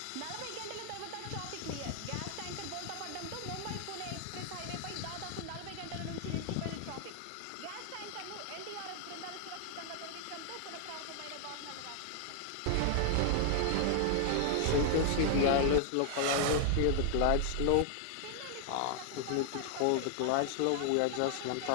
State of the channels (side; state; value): both; different; correlation 0.00